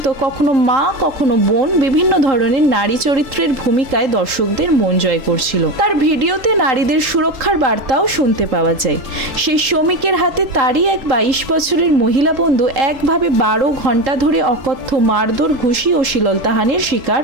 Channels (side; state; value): left; late; 3.8 ms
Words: কখনো মা কখনো বোন বিভিন্ন ধরনের নারী চরিত্রের ভূমিকায় দর্শকদের মন জয় করছিল। তার ভিডিওতে নারীদের সুরক্ষার বার্তাও শুনতে পাওয়া যায়। সেই শ্রমিকের হাতে তারই এক 22 বছরের মহিলা বন্ধু একভাবে 12 ঘন্টা ধরে অকথ্য মারধর, ঘুষি ও শ্লীলতাহানির শিকার